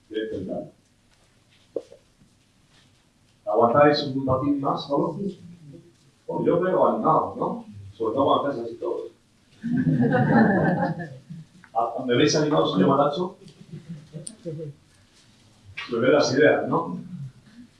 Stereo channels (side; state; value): both; identical; correlation 1.00